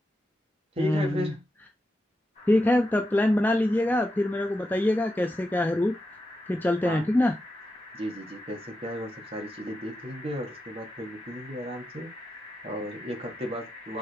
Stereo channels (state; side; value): normal; both; correlation 0.88